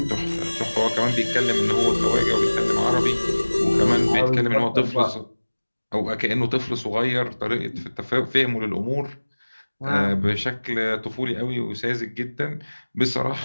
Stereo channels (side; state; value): both; inverted; correlation -1.00